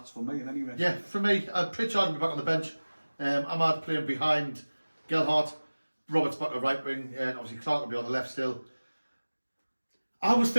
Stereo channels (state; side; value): inverted; both; correlation -1.00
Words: for me, anyway. Yeah, for me, Pritchard will be back on the bench. Ahmad playing behind Gelhardt. Roberts back to right wing, and obviously Clark will be on the left still. I was